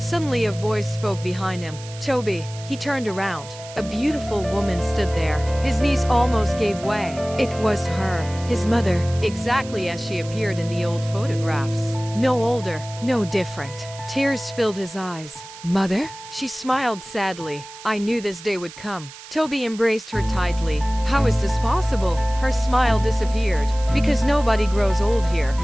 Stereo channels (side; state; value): right; noise; hiss, 16 dB below the sound